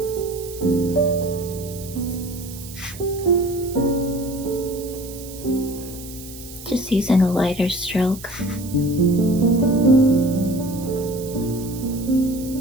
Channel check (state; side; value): noise; right; hiss, 15 dB below the sound